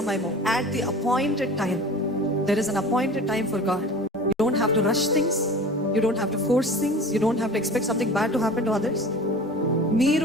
at the appointed time. There is an appointed time for God. You don't have to rush things, you don't have to force things, you don't have to expect something bad to happen to others.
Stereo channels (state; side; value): normal; both; correlation 0.39